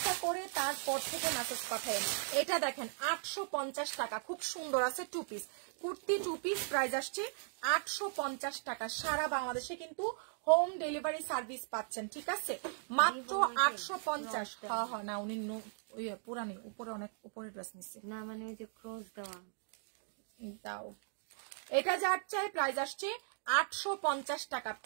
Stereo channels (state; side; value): silent; left; digital silence